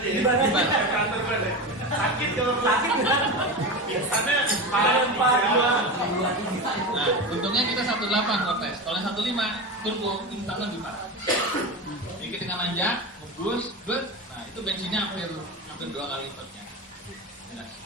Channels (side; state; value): both; normal; correlation 0.22